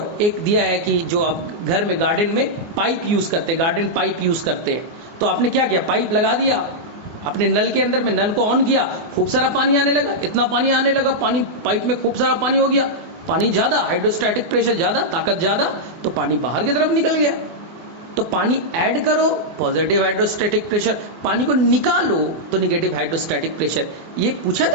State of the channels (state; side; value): late; left; 24 ms